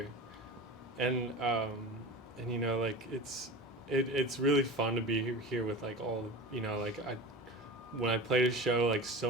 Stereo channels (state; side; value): normal; both; correlation 0.31